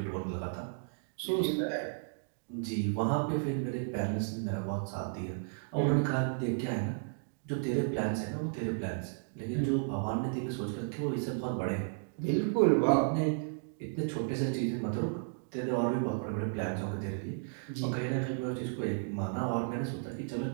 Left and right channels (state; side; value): silent; left; digital silence